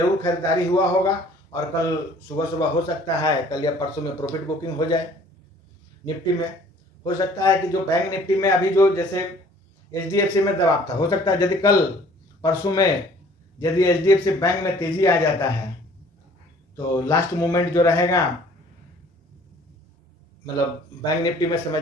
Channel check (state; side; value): normal; both; correlation 0.54